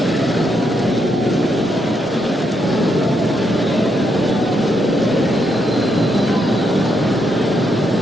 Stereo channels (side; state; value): both; normal; correlation 0.79